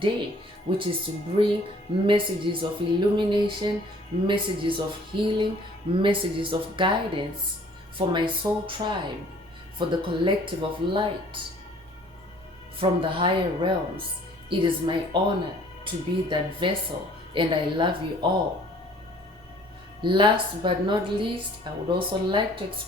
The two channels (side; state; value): both; normal; correlation 0.55